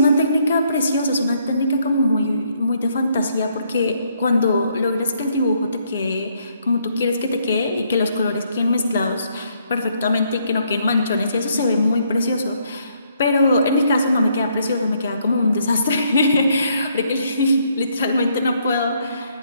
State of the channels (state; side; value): inverted; both; correlation -0.71